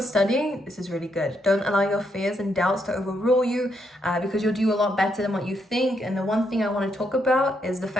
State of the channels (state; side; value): normal; both; correlation 0.78